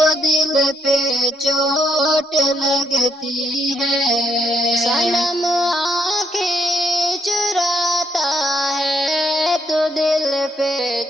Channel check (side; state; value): both; normal; correlation 0.73